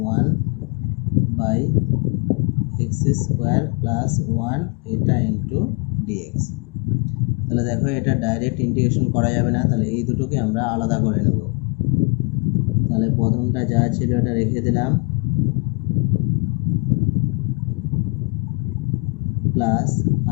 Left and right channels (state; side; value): quieter; right; 32.8 dB